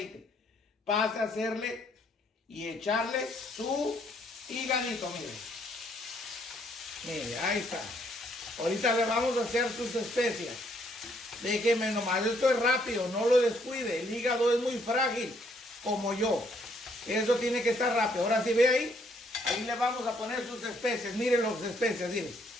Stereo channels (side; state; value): both; normal; correlation 0.68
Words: Pase a hacerle y echarle su hígadito, mire. Mire, ahí está. Ahorita le vamos a hacer sus especias. Déjeme nomás, esto es rápido, no lo descuide. El hígado es muy frágil, como yo. Eso tiene que estar rápido. Ahora sí ve ahí. Ahí le vamos a poner sus especias. Miren las especias, miren.